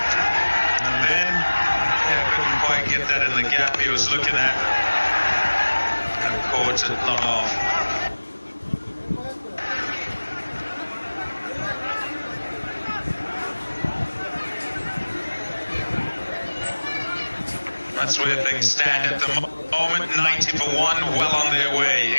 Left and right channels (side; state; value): both; inverted; correlation -1.00